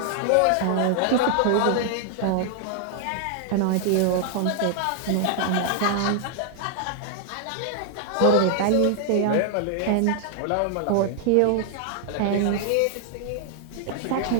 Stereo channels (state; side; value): different; both; correlation 0.00